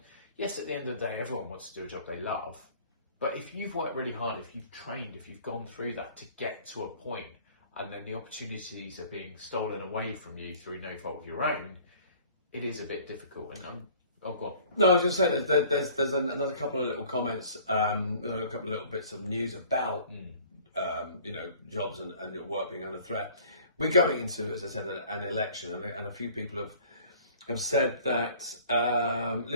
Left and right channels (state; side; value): inverted; both; correlation -0.51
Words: yes, at the end of the day, everyone wants to do a job they love. But if you've worked really hard, if you've trained, if you've gone through that to get to a point, and then the opportunities are being stolen away from you through no fault of your own, it is a bit difficult. And go on. No, I was just saying there's another couple of little comments, a couple of little bits of news about jobs and work being under threat. We're going into, as I said, an election, and a few people have said that